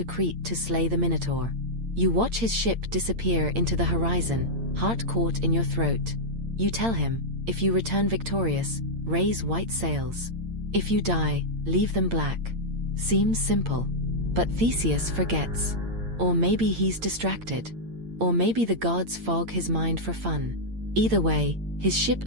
Crete to slay the Minotaur. You watch his ship disappear into the horizon, heart caught in your throat. You tell him, if you return victorious, raise white sails. If you die, leave them black. Seems simple. But Theseus forgets. Or maybe he's distracted. Or maybe the gods fog his mind for fun. Either way, his ship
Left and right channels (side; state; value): left; late; 8.8 ms